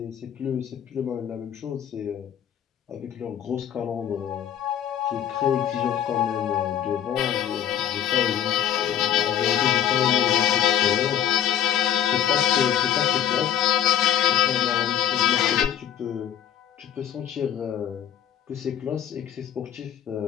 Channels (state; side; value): quieter; right; 10.1 dB